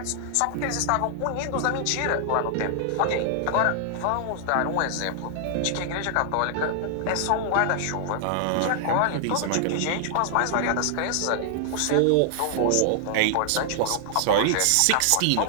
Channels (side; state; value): both; different; correlation 0.00